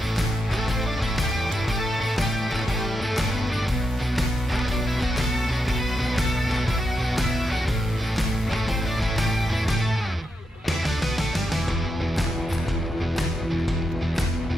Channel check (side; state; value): both; normal; correlation 0.84